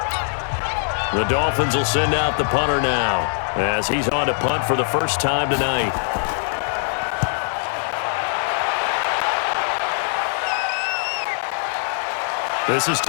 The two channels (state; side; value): silent; right; digital silence